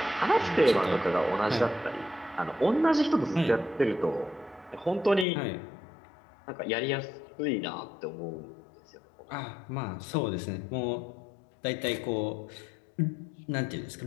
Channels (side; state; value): right; drops out; at 5.2 s